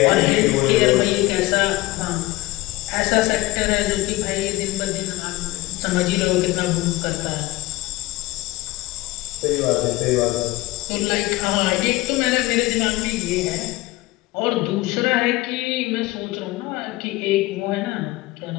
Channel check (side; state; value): right; quieter; 19.2 dB